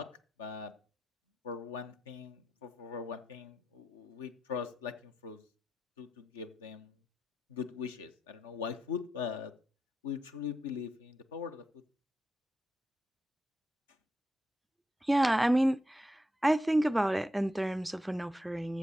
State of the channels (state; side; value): normal; both; correlation 0.87